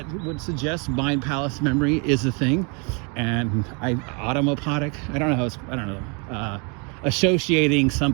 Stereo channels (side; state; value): left; quieter; 34.1 dB